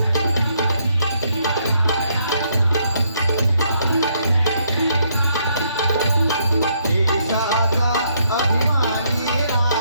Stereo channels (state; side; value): inverted; both; correlation -0.72